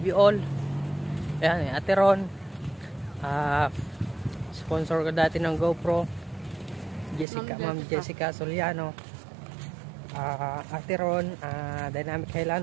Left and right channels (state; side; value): drops out; left; at 7.2 s